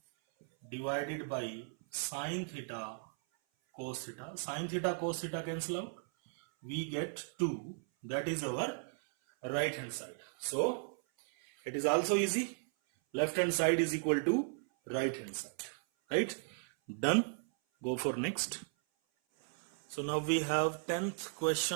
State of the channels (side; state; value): left; silent; 54 dB below the other